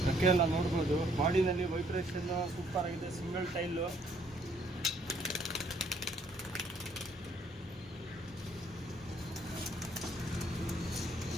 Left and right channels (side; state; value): both; normal; correlation 0.65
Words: ಅಕ್ಕೆ ಎಲ್ಲ ನೋಡ್ಬೋದು, ಬಾಡಿನಲ್ಲಿ ವೈಬ್ರೇಷನ್ ಸೂಪರ್ ಆಗಿದೆ. Single tile.